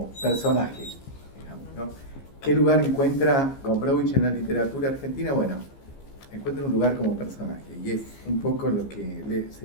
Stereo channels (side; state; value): right; late; 15 ms